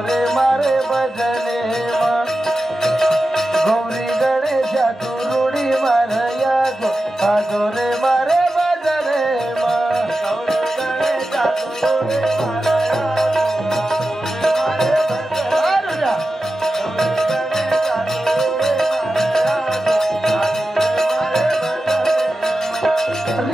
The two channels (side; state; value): both; normal; correlation 0.92